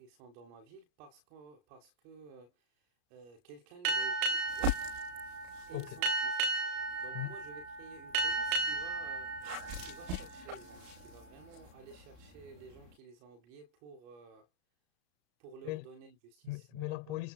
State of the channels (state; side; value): late; left; 33 ms